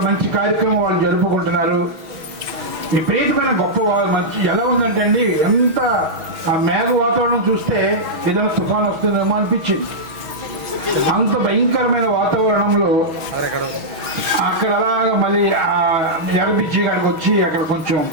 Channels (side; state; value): left; late; 6.2 ms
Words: మంచి కార్యక్రమం వాళ్ళు జరుపుకుంటున్నారు. విపరీతమైన గొప్ప మంచి ఎలా ఉందంటే అండి, ఎంత ఆ మేఘ వాతావరణం చూస్తే ఏదైనా తుఫాన్ వస్తుందేమో అనిపించింది. అంత భయంకరమైన వాతావరణంలో అక్కడ అలాగా మళ్ళీ ఆ ఎగబిచ్చి కాడికి వచ్చి అక్కడ కొంచెం